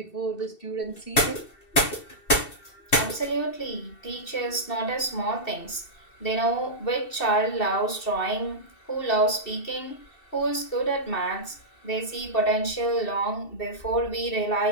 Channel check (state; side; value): late; right; 2.7 ms